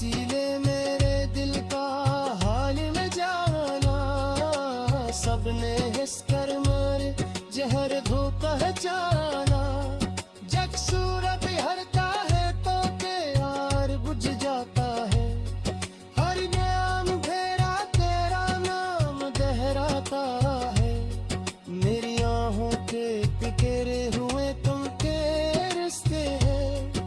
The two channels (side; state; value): both; identical; correlation 1.00